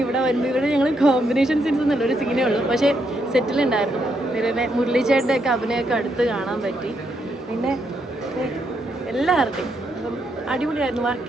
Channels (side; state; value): both; normal; correlation 0.78